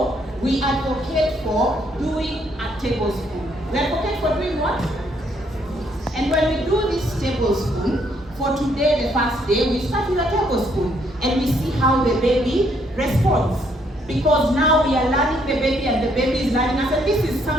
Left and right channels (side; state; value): both; normal; correlation 0.70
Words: we advocate for doing a tablespoon. We advocate for doing what? And when we do this tablespoon, for today, the first day, we start with a tablespoon and we see how the baby responds. Because now we are learning the baby and the baby is learning us, and this is